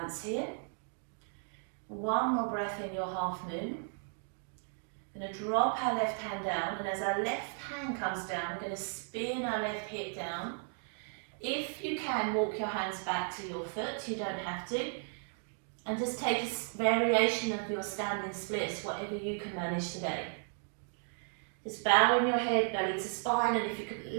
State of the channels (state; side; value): silent; left; 54 dB below the other